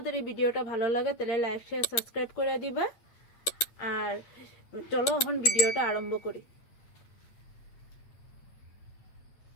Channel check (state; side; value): late; right; 8.8 ms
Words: এই ভিডিওটা ভালো লাগে তাহলে লাইক শেয়ার সাবস্ক্রাইব করে দিবা। আর চলো এখন ভিডিওটা আরম্ভ করি।